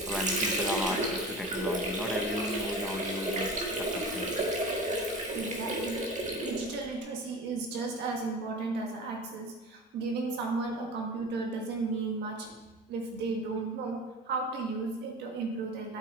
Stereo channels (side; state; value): both; normal; correlation 0.35